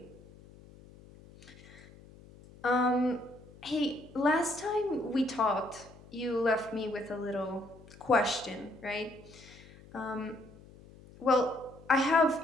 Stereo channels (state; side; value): noise; left; hum, 21 dB below the sound